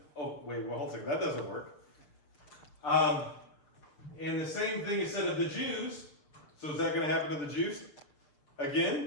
hold on a second, that doesn't work. And the same thing is said of the Jews. So is that going to happen to the Jews?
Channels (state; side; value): late; right; 6.8 ms